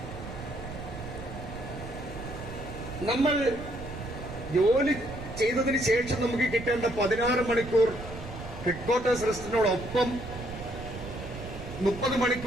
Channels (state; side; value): noise; right; rumble, 11 dB below the sound